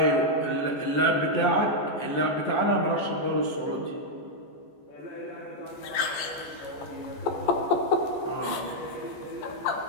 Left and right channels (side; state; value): right; late; 14 ms